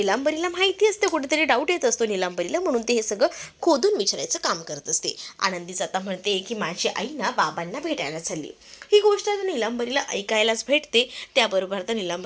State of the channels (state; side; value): identical; both; correlation 1.00